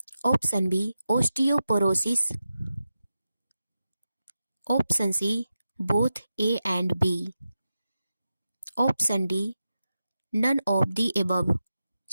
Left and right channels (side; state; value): both; inverted; correlation -0.91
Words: Option B, osteoporosis. Option C, both A and B. Option D, none of the above.